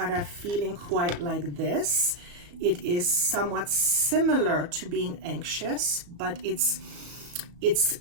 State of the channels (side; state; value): left; late; 35 ms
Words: a feeling quite like this. It is somewhat similar to being anxious, but